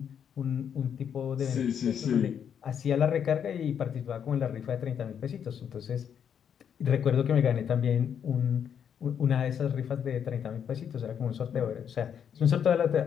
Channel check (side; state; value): right; quieter; 8.2 dB